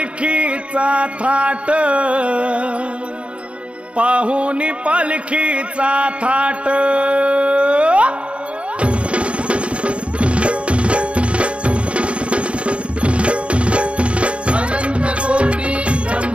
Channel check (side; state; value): left; late; 0.061 ms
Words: थाट, पाहुनी पालखीचा थाट। अनंत कोटी